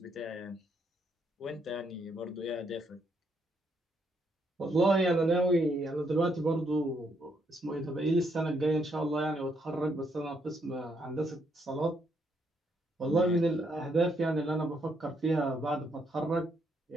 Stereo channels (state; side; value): normal; both; correlation 0.74